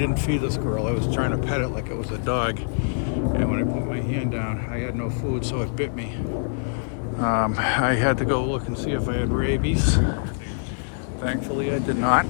feed this girl. I was trying to pet it like it was a dog. And when I put my hand down, I had no food, so it bit me. I had to go look and see if I had rabies. Thankfully, I did not.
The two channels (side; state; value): right; silent; 62 dB below the other